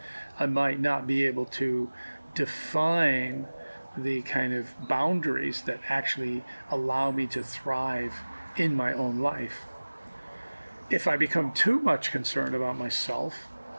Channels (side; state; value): both; inverted; correlation -1.00